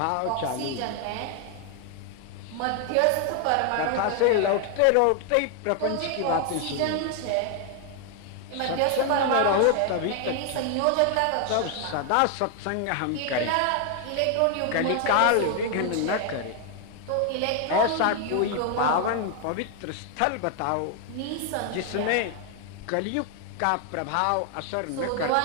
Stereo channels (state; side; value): different; both; correlation 0.00